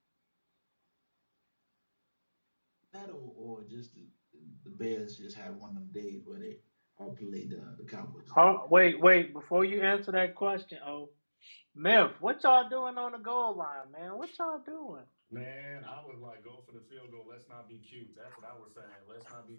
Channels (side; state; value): both; inverted; correlation -1.00